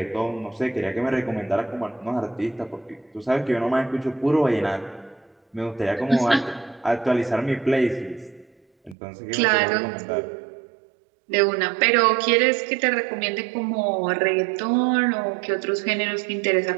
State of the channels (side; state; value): left; drops out; at 9.0 s